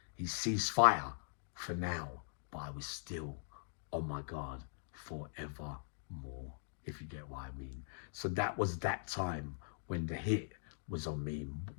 he ceased fire for now. But I was still on my guard forevermore, if you get what I mean. So that was that time when the hit was on me,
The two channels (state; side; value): silent; right; digital silence